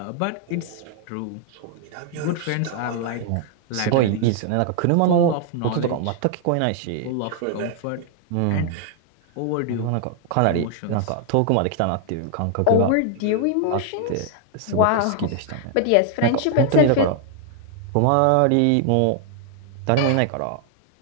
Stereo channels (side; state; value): both; different; correlation 0.00